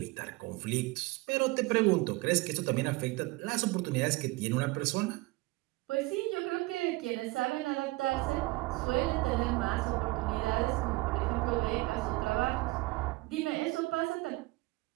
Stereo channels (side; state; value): left; quieter; 22.3 dB